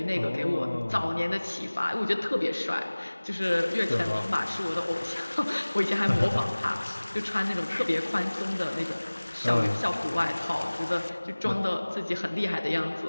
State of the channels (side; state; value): both; inverted; correlation -1.00